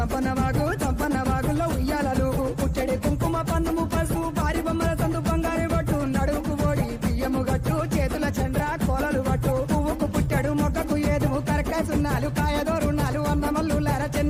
వాగుల్లో ఉయ్యాలలు పుట్టడి కుంకుమ పన్నుము పసుపు భారీ బొమ్మల సందు బంగారు పట్టు నడుముకు ఓడి బియ్యము గట్టు చేతుల చంద్ర కోలలు పట్టు పువ్వుకు పుట్టడు మొక్కకు ఏదుము కరకాసున్నాలు కాయదోరున్నాలు అన్నమల్లులార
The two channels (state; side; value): identical; both; correlation 1.00